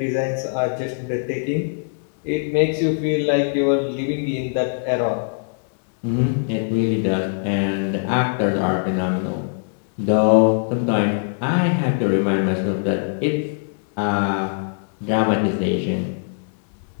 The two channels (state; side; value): silent; right; digital silence